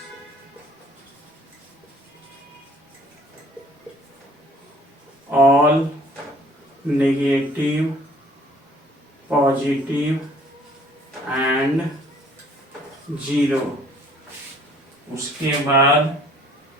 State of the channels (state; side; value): normal; both; correlation 0.56